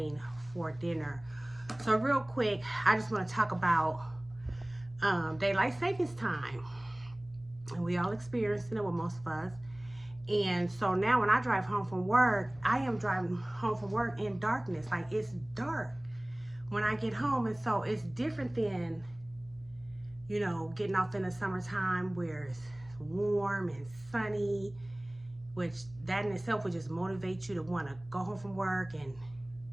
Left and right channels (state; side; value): noise; left; hum, 22 dB below the sound